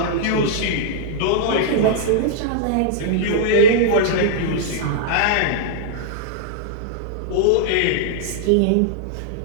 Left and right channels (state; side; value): different; both; correlation -0.02